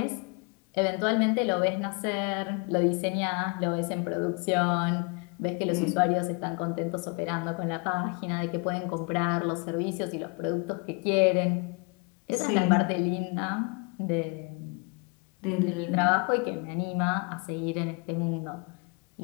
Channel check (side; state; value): right; quieter; 32.2 dB